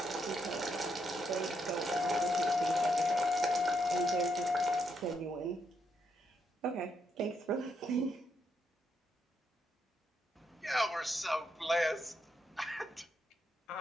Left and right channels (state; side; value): normal; both; correlation 0.78